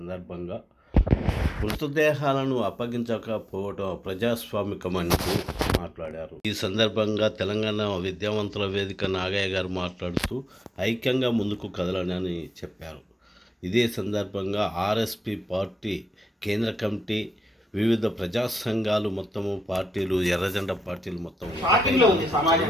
మృతదేహాలను అప్పగించకపోవడం ప్రజాస్వామికమంటూ మాట్లాడారు. ఈ సందర్భంగా తెలంగాణ విద్యావంతుల వేదిక నాగయ్య గారు మాట్లాడుతూ ఐక్యంగా ముందుకు కదలనని చెప్పారు. ఇదే సందర్భంగా ఆర్ఎస్పి పార్టీ కేంద్ర కమిటీ, వివిధ ప్రజా సంఘాలు మొత్తము, పార్టీలు, ఎర్రజెండా పార్టీలు మొత్తం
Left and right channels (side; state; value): both; normal; correlation 0.88